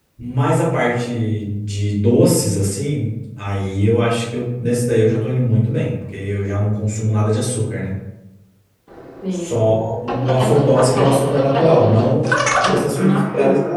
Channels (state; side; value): identical; both; correlation 1.00